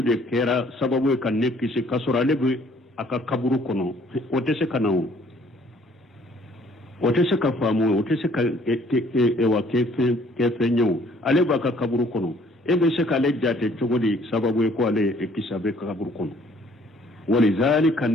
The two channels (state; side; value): normal; both; correlation 0.59